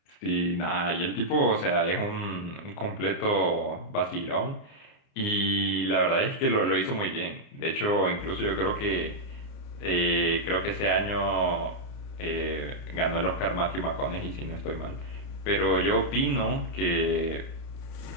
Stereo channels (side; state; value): right; late; 29 ms